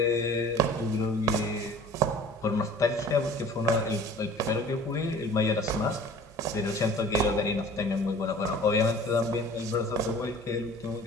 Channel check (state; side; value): normal; both; correlation 0.45